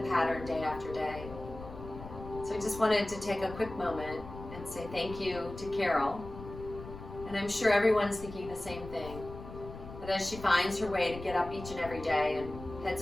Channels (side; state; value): left; noise; rumble, 13 dB below the sound